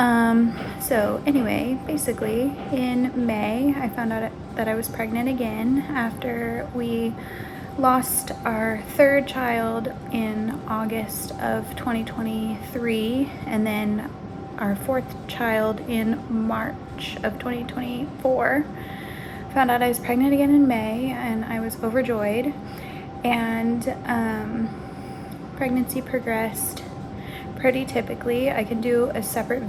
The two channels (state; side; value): identical; both; correlation 1.00